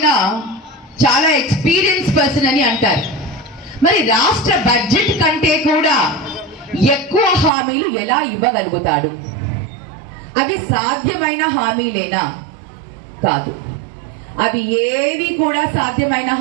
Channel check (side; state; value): left; drops out; at 7.5 s